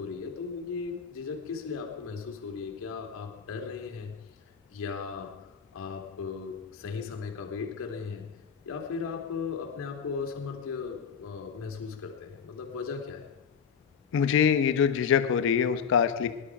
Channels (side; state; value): right; quieter; 6.8 dB